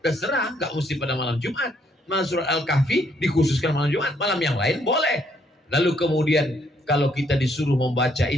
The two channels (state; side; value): normal; both; correlation 0.70